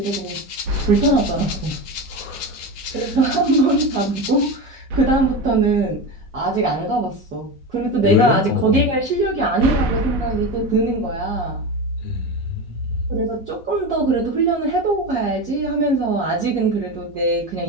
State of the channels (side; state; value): both; normal; correlation 0.22